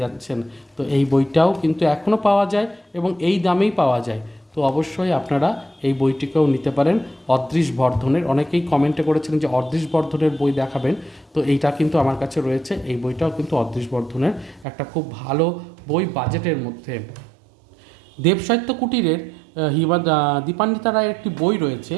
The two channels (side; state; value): left; drops out; at 14.7 s